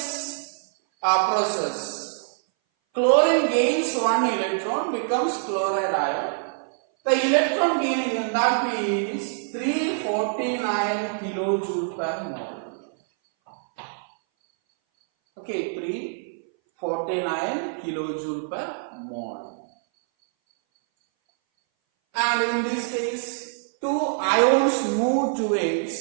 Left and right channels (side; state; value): left; silent; 60 dB below the other